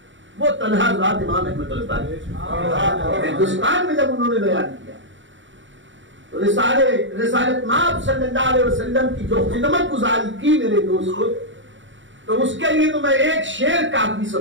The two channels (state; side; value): late; left; 0.55 ms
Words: وہ تنہا ذات امام احمد رضا ہے. ہندوستان میں جب انہوں نے بیان کیا تو رسالت مآب صلی اللہ علیہ وسلم کی جو خدمت گزاری کی میرے دوستو، تو اس کے لیے تو میں ایک شعر کافی